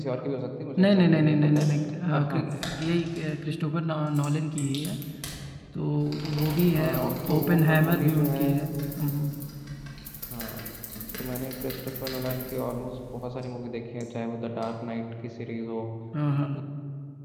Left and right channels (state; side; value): identical; both; correlation 1.00